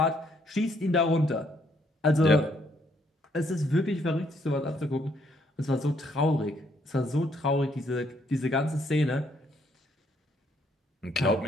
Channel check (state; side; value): normal; both; correlation 0.69